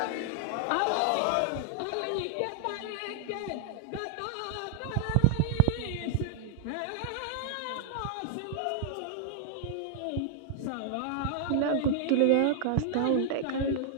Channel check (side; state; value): both; different; correlation -0.01